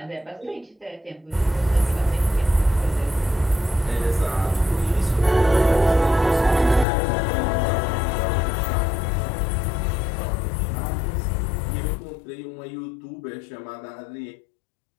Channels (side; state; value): right; drops out; at 6.9 s